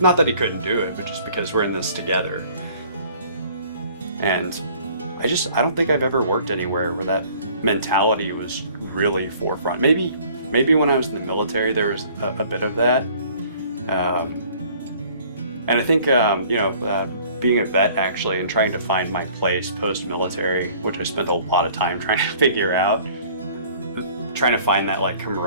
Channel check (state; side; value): inverted; both; correlation -0.54